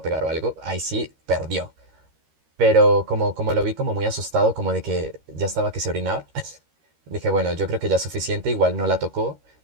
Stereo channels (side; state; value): left; late; 13 ms